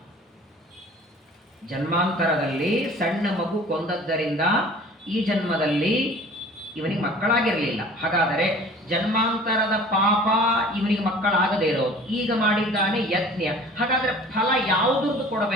ಜನ್ಮಾಂತರದಲ್ಲಿ ಸಣ್ಣ ಮಗು ಕೊಂದದ್ದರಿಂದ ಈ ಜನ್ಮದಲ್ಲಿ ಇವನಿಗೆ ಮಕ್ಕಳಾಗಿರಲಿಲ್ಲ. ಹಾಗಾದರೆ ಜನ್ಮಾಂತರದ ಪಾಪ ಇವನಿಗೆ ಮಕ್ಕಳಾಗದೇ ಇರೋದು. ಈಗ ಮಾಡಿದ್ದಾನೆ ಯಜ್ಞ. ಹಾಗಾದ್ರೆ ಫಲ ಯಾವುದರದ್ದು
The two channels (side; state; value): both; normal; correlation 0.46